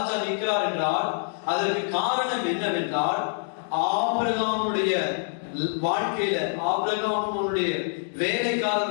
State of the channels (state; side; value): silent; right; digital silence